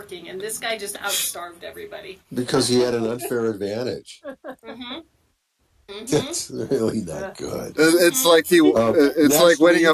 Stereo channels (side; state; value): both; identical; correlation 1.00